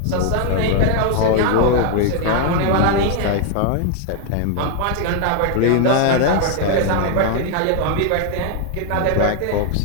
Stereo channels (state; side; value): different; both; correlation 0.00